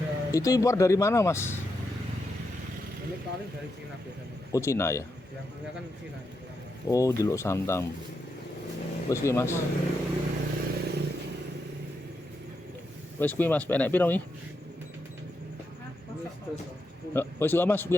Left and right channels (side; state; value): both; normal; correlation 0.84